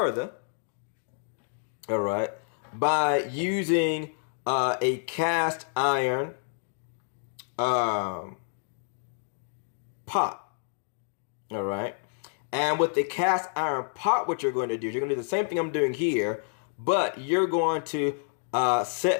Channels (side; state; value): right; silent; digital silence